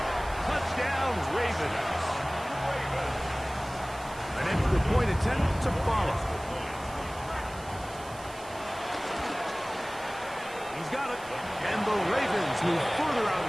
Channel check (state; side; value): noise; right; hiss, 19 dB below the sound